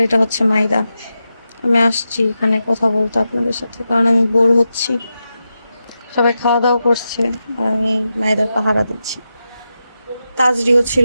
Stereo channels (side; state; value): both; inverted; correlation -0.89